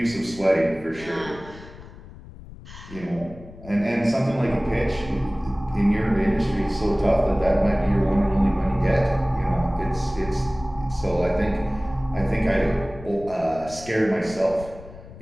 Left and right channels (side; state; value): left; noise; rumble, 17 dB below the sound